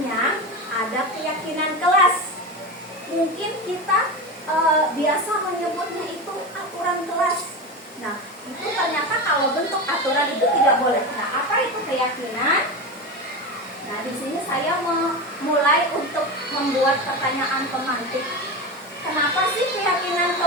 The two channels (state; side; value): normal; both; correlation 0.22